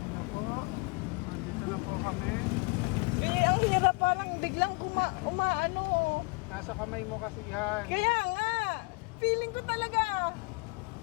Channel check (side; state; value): right; quieter; 28.7 dB